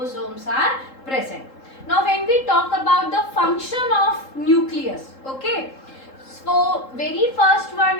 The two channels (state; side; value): late; right; 3.7 ms